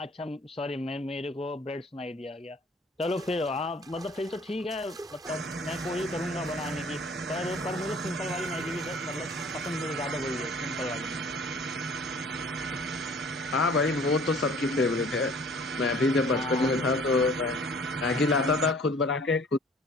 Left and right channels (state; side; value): normal; both; correlation 0.52